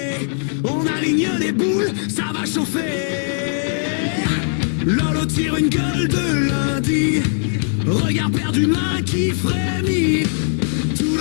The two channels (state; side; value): silent; right; 66 dB below the other